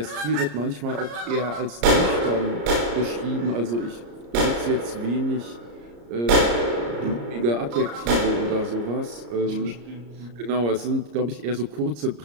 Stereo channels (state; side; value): late; left; 34 ms